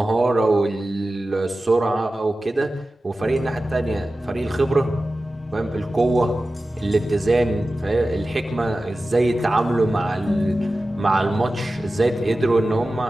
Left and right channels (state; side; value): normal; both; correlation 0.95